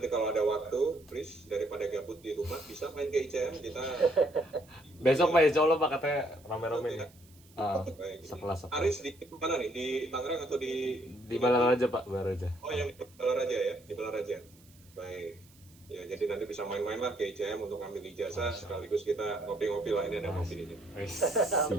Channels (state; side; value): noise; right; hiss, 27 dB below the sound